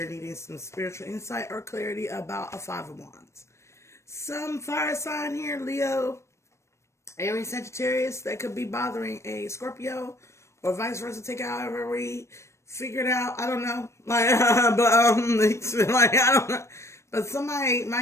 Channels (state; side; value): late; right; 0.13 ms